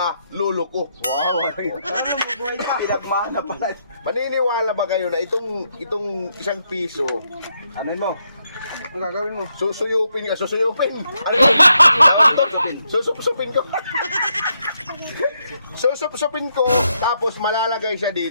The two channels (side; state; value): both; inverted; correlation -0.79